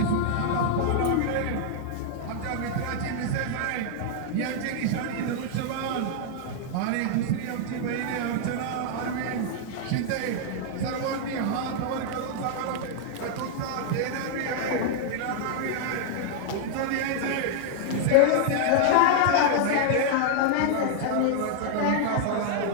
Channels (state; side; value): different; both; correlation -0.01